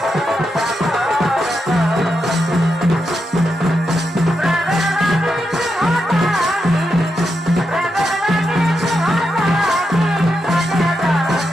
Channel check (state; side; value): normal; both; correlation 0.85